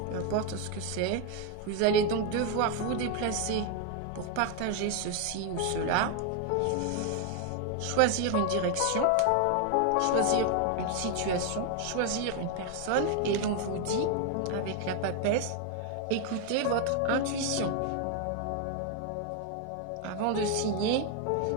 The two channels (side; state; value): both; different; correlation 0.01